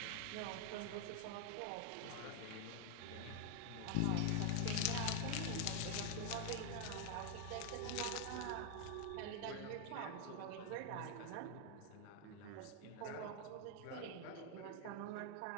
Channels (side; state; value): both; different; correlation 0.00